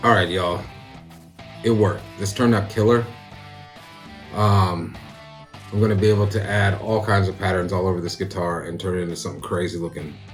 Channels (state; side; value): identical; both; correlation 1.00